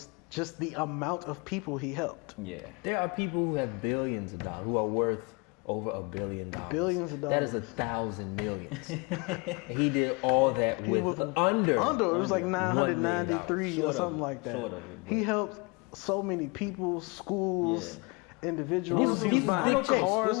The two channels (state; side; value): quieter; right; 30.0 dB